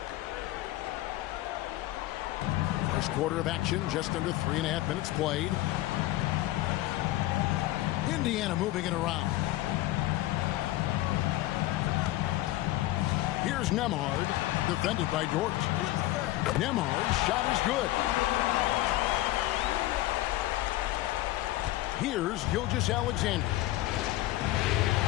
First quarter of action, just under 3.5 minutes played. Indiana moving it around. Here's Nembhard, defended by Dort. Nembhard's shot is good. Here's Gilgeous-Alexander.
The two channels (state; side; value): quieter; right; 16.6 dB